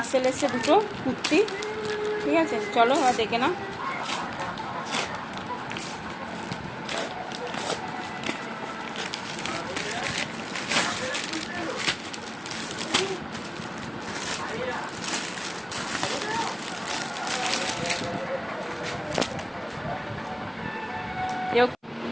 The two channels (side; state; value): both; identical; correlation 1.00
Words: এসছে 2টো কুর্তি, ঠিক আছে। চলো আর দেখে না।